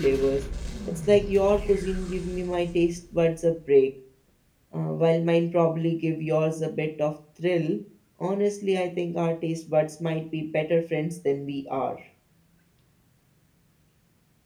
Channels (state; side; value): identical; both; correlation 1.00